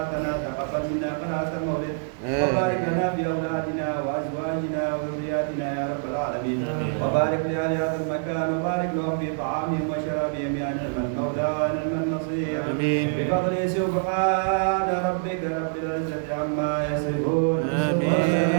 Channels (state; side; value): silent; left; digital silence